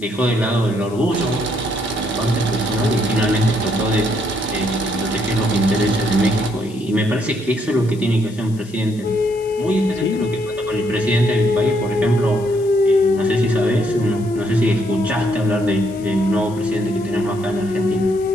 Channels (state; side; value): noise; left; hiss, 23 dB below the sound